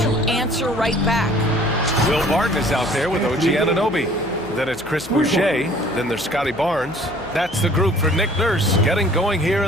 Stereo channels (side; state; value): left; noise; hum, 21 dB below the sound